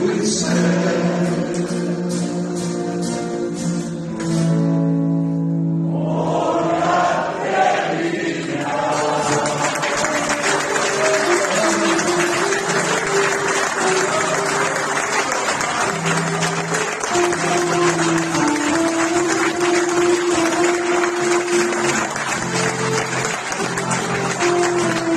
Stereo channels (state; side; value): identical; both; correlation 1.00